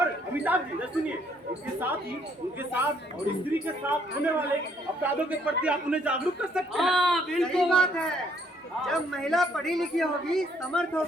अमिताभ जी सुनिए, इसके साथ ही उनके साथ और स्त्री के साथ होने वाले अपराधों के प्रति आप उन्हें जागरूक कर सकते हैं। हाँ सही बिल्कुल। बात है। जब महिला पढ़ी लिखी होगी, समर्थ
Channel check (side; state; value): both; normal; correlation 0.67